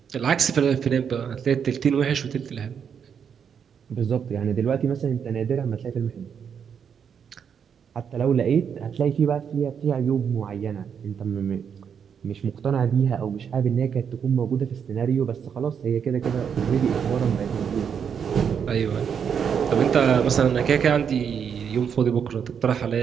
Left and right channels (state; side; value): quieter; left; 7.4 dB